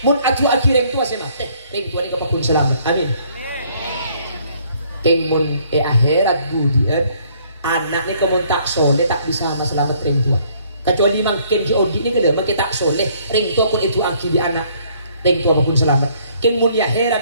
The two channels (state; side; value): inverted; both; correlation -0.63